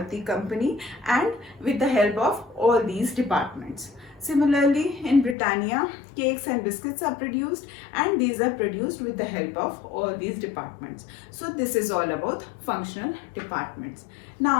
company and with the help of all these departments. Similarly, in Britannia, cakes and biscuits are produced and these are produced with the help of all these departments. So this is all about functional departments.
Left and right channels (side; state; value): right; drops out; at 5.4 s